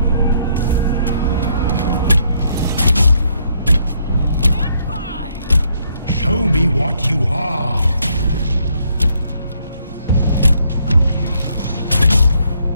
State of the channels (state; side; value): inverted; both; correlation -0.71